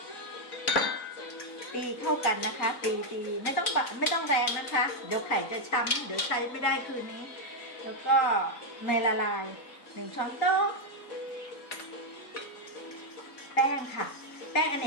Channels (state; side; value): late; right; 3.9 ms